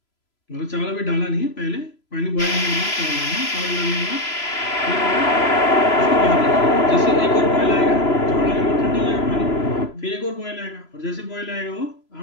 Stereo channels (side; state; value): right; late; 3.0 ms